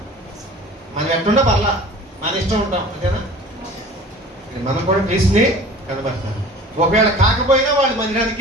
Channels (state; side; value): normal; both; correlation 0.43